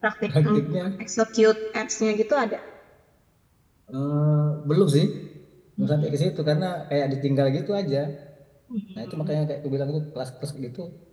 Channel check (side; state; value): both; identical; correlation 1.00